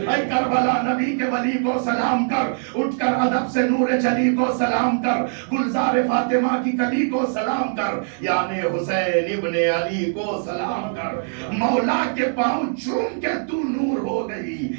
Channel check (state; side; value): silent; left; digital silence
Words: اے کربلا نبی کے ولی کو سلام کر، اٹھ کر ادب سے نور جلی کو سلام کر، گلزار فاطمہ کی کلی کو سلام کر، یعنی حسین ابن علی کو سلام کر. مولا کے پاؤں چوم کے تو نور ہو گئی،